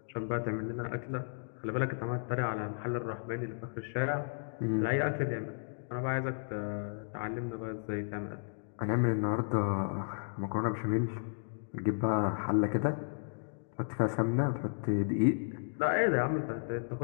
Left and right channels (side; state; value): right; silent; digital silence